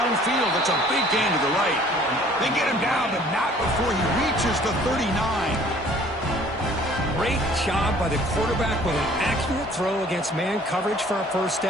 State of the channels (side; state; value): both; normal; correlation 0.54